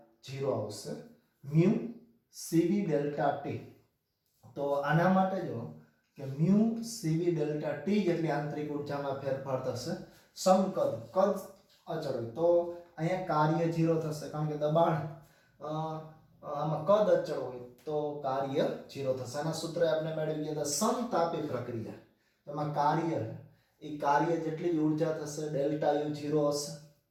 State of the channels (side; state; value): both; identical; correlation 1.00